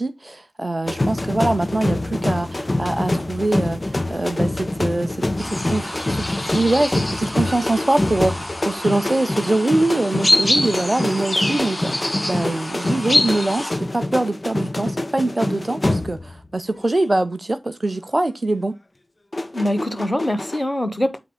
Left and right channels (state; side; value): normal; both; correlation 0.96